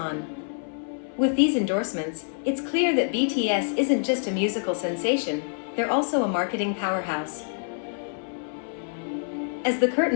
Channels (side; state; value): right; silent; 56 dB below the other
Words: With these endorsements, it's clear that BTS isn't just a musical sensation, they're also a marketing powerhouse. As the